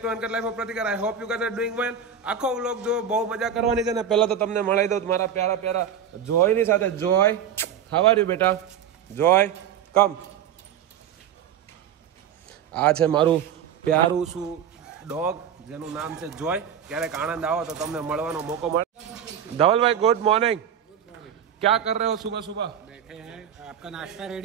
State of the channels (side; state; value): left; quieter; 8.3 dB